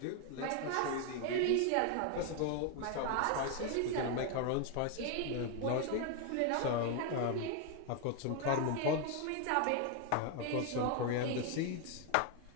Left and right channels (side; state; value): both; different; correlation 0.01